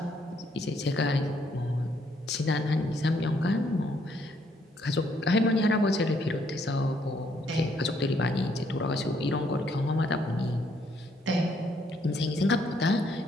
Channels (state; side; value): normal; both; correlation 0.70